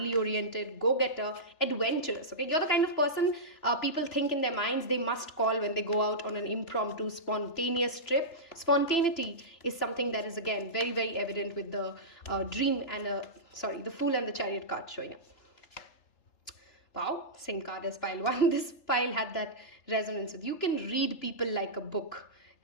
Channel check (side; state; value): right; late; 3.3 ms